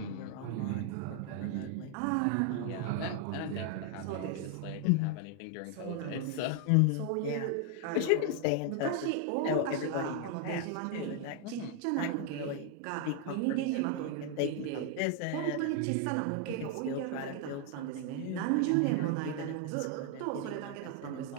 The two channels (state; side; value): different; both; correlation 0.00